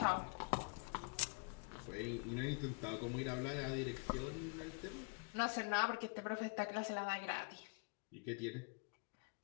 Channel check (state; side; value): quieter; right; 32.6 dB